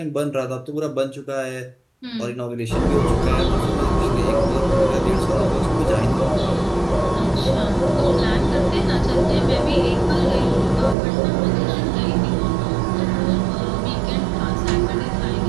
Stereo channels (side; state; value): left; drops out; at 11.0 s